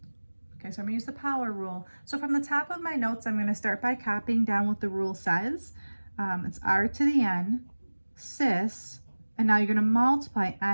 Okay, so I'm going to use the power rule. So from the top of my notes, I'm going to start by copying down what the rule says. It's r to the n, cis, and now you're going to multiply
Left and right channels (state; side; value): inverted; both; correlation -1.00